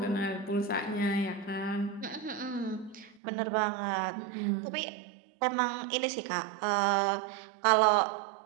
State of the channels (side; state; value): left; drops out; at 3.2 s